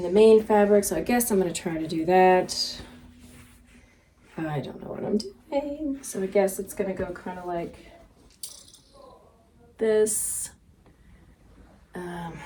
the main fabric. So I guess I'm going to try to do that. I don't know what I'm doing. So I guess it's going to go kind of like this. And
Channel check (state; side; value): identical; both; correlation 1.00